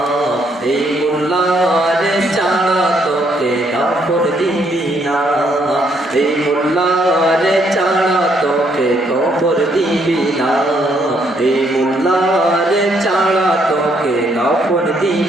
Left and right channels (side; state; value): both; normal; correlation 0.71